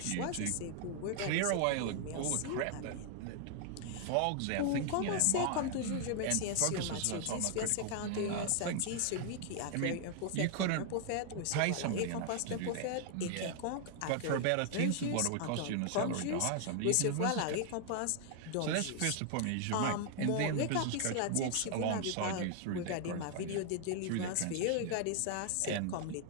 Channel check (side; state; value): both; different; correlation 0.00